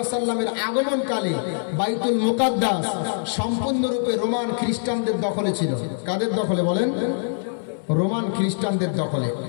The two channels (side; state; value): right; silent; digital silence